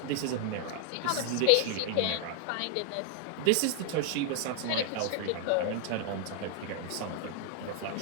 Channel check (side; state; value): both; different; correlation 0.00